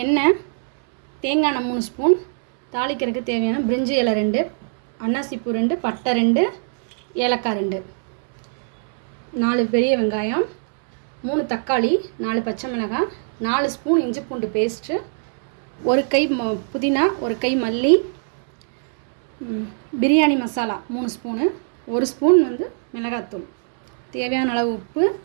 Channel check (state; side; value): silent; left; 65 dB below the other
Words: எண்ணெய், தேங்காய் எண்ணெய் 3 ஸ்பூன், தாளிக்கிறதுக்கு தேவையான பிரிஞ்சி இலை 2, அன்னாசிப்பூ 2, பட்டை 2, ஏலக்காய் 2, 4 பெரிய வெங்காயம், 3 தக்காளி, 4 பச்சை மிளகாய், 4 ஸ்பூன் இஞ்சி பூண்டு பேஸ்ட்டு, 1 கை புதினா, 1 கை மல்லி, பிரியாணி மசாலா 3 ஸ்பூனு, 1 ஸ்பூன் மிளகாத்தூள், தேவையான அளவு உப்பு,